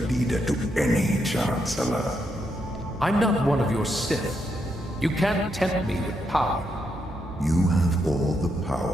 leader to any Chancellor. I'm not one of your Sith. You can't tempt me with power. You have all the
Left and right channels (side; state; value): both; normal; correlation 0.80